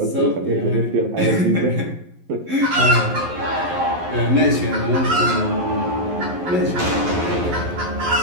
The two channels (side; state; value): left; late; 11 ms